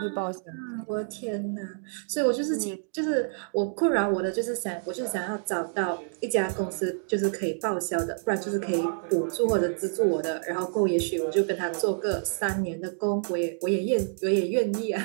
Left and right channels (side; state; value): left; silent; digital silence